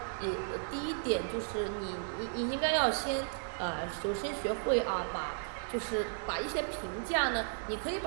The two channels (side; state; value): left; silent; 55 dB below the other